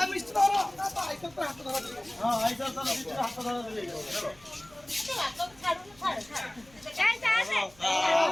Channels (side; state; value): right; noise; hum, 26 dB below the sound